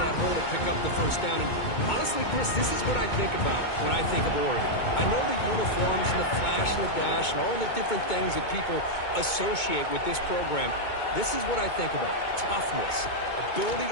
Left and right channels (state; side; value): late; right; 2.2 ms